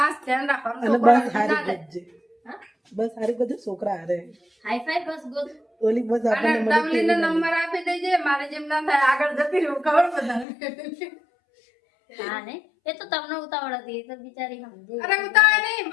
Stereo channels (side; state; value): right; drops out; at 10.5 s